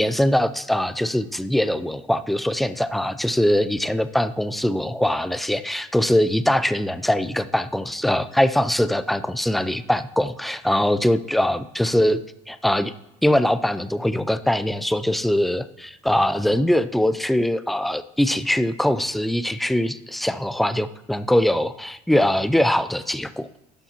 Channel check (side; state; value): both; normal; correlation 0.96